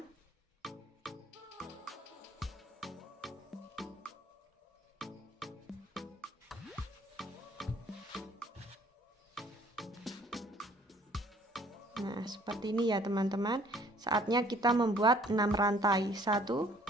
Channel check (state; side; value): normal; both; correlation 0.58